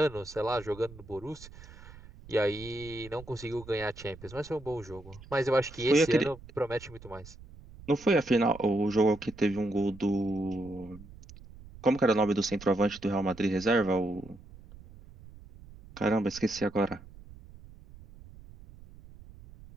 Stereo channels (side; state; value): right; noise; rumble, 19 dB below the sound